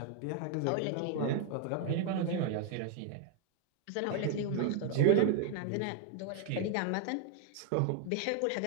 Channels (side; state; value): both; different; correlation 0.00